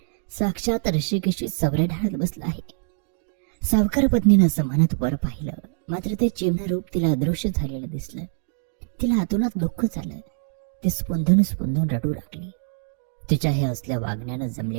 साक्षात ऋषिकेशी चौऱ्या ढाळत बसला आहे. सावकार पत्नीनं असं म्हणत वर पाहिलं, मात्र ते चिन्ह रूप तिला अदृश्य झालेलं दिसलं. तिला आतूनात दुःख झालं. ती स्पुंदून स्पुंदून रडू लागली. तिच्या हे असल्या वागण्यानं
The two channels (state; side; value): silent; left; digital silence